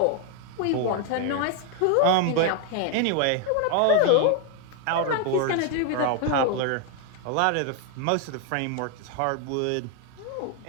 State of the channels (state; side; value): different; both; correlation 0.00